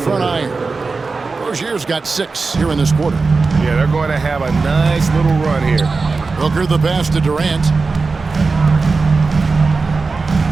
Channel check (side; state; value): left; quieter; 4.2 dB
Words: iron. Rozier's got 6 here in this quarter. Yeah, they're going to have a nice little run here. Booker the pass to Durant.